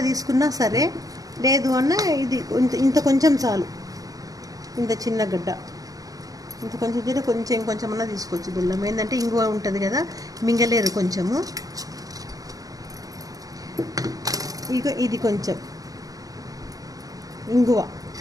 తీసుకున్నా సరే, లేదు అన్న ఇది ఇంత కొంచెం చాలు. ఇంత చిన్న గడ్డ ఇంత కొంచెం చేస్తే కొంచెం అన్నా తీసుకోవచ్చు బెల్లం. ఏంటంటే ఇంగువ ఉంటుంది కదా, మింగలేరు కొంచెము. ఇక ఇది కొంచెం ఇంగువ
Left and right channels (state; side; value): late; left; 0.18 ms